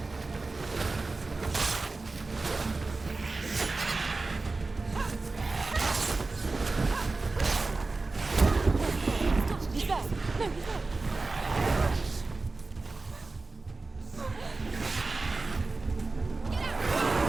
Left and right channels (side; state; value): left; quieter; 3.6 dB